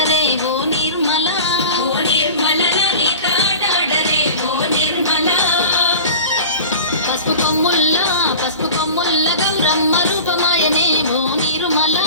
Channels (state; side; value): inverted; both; correlation -0.37